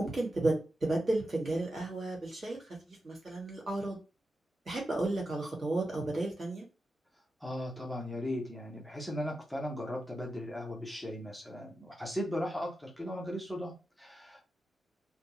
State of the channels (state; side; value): normal; both; correlation 0.90